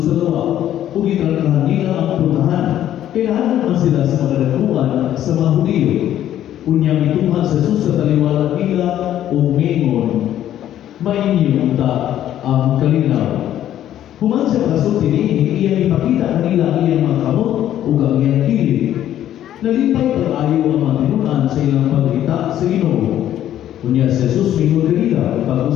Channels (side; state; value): right; quieter; 11.7 dB